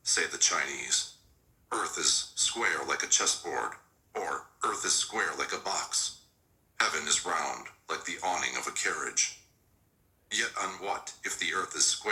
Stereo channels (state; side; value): identical; both; correlation 1.00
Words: say the Chinese. Earth is square like a chessboard, or earth is square like a box. Heaven is round like the awning of a carriage. Yet on what, if the earth is